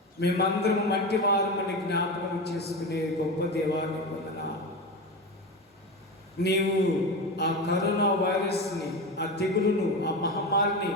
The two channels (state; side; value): normal; both; correlation 0.22